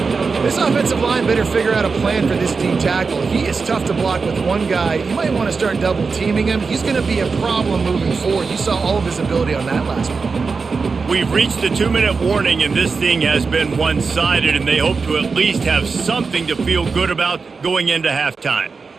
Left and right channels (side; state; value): left; quieter; 4.7 dB